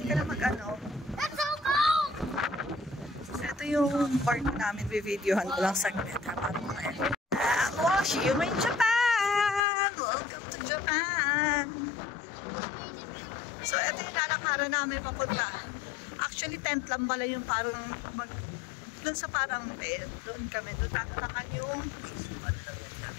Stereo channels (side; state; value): right; drops out; at 9.6 s